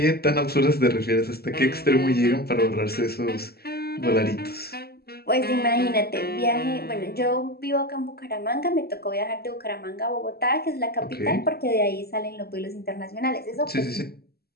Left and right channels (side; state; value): right; late; 0.46 ms